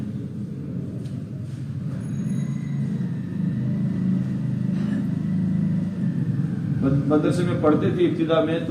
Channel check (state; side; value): identical; both; correlation 1.00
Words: مدرسے میں پڑھتے تھے ابتدا میں،